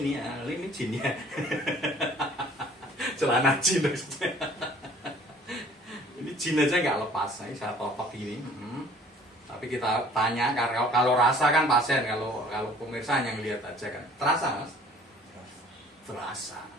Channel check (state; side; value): normal; both; correlation 0.53